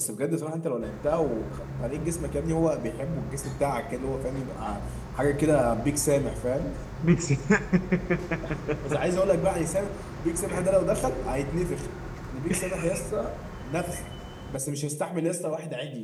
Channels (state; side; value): identical; both; correlation 1.00